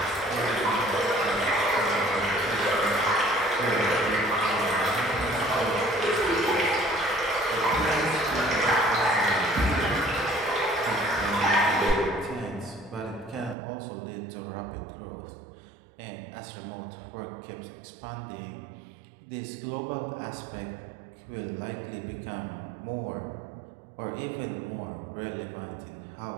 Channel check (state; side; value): drops out; left; at 13.6 s